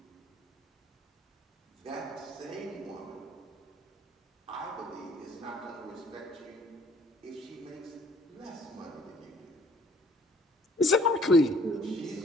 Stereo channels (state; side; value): normal; both; correlation 0.58